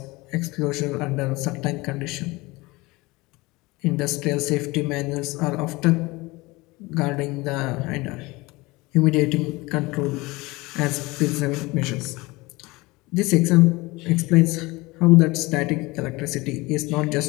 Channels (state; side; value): quieter; right; 22.5 dB